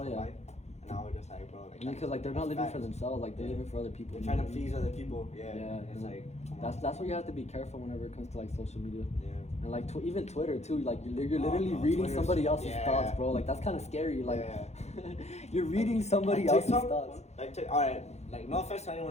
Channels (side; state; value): right; late; 0.32 ms